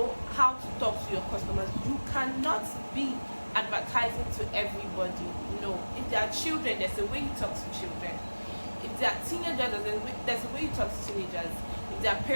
how to talk to your customers. You cannot be advertising to everybody. No. If they are children, there's a way you talk to children. If they are teenagers, there's a way you talk to teenagers. If they are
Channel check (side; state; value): both; inverted; correlation -1.00